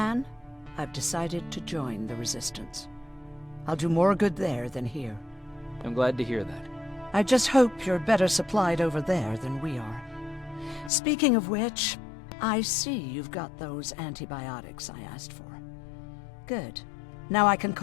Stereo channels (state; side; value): drops out; right; at 10.9 s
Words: I've decided to join the Resistance. I'll do more good there than here. I'm glad to hear that. I just hope you're better supplied over there than we are. Speaking of which, I see you've got those antibiotics I asked for. Good. Now I can